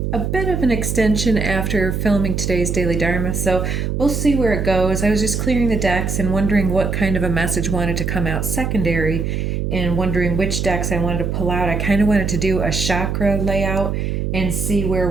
bit of an extension after filming today's Daily Dharma, so we'll see where it goes. I was just clearing the decks and wondering what kind of a message wanted to come out secondary and wondering which decks I wanted to pull out. I kind of wanted to do a chakra layout and see where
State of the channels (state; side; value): noise; right; hum, 1 dB below the sound